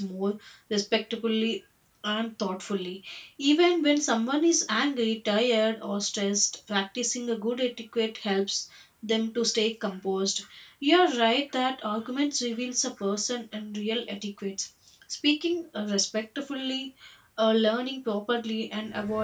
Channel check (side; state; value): both; identical; correlation 1.00